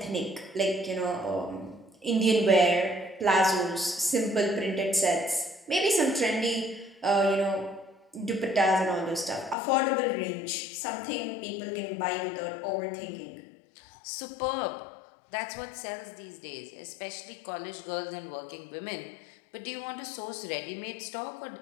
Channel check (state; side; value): drops out; right; at 9.6 s